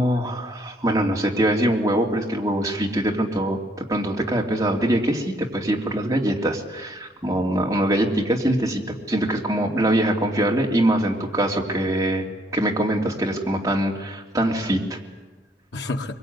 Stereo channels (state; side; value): normal; both; correlation 0.67